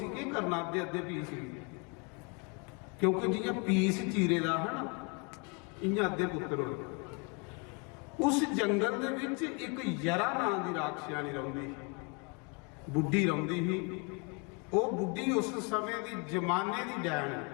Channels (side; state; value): right; quieter; 33.4 dB